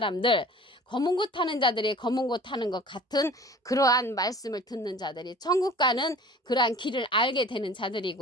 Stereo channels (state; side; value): normal; both; correlation 0.45